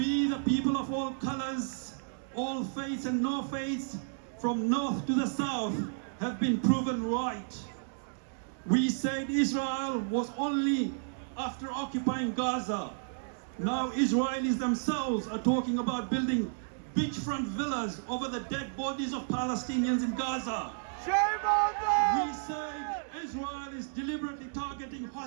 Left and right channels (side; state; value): left; silent; digital silence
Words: the people of all colors, all faiths and no faiths, from north to the south, have been proven right. We said Israel was only after occupying Gaza. Now Israelis themselves are talking about building beachfront villas over the dead bodies of Palestinians in Gaza. Shame on them! We say Israel is deliberately targeting